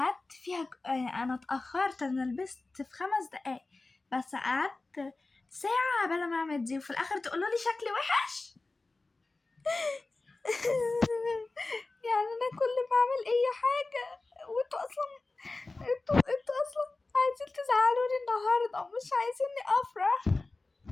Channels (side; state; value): right; quieter; 3.3 dB